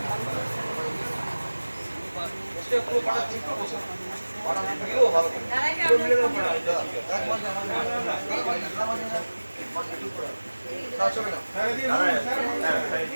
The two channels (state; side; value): inverted; both; correlation -1.00